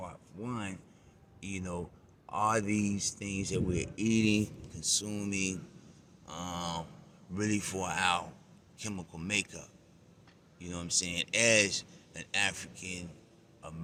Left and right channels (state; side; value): identical; both; correlation 1.00